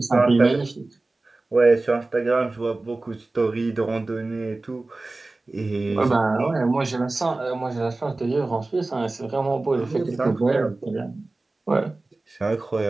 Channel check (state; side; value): quieter; left; 3.1 dB